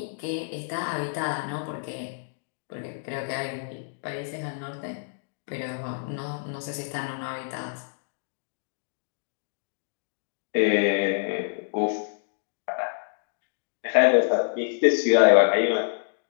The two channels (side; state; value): right; silent; digital silence